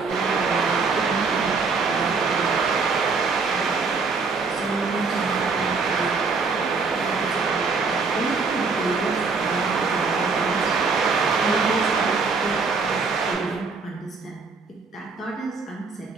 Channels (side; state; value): left; quieter; 4.6 dB